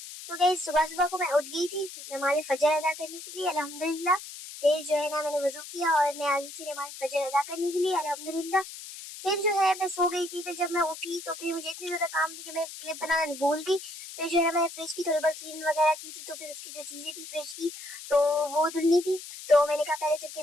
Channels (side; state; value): left; noise; hiss, 12 dB below the sound